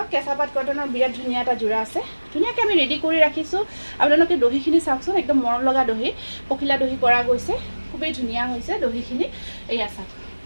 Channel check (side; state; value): both; inverted; correlation -1.00